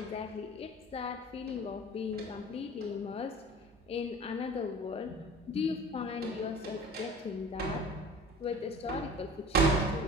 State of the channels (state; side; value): normal; both; correlation 0.42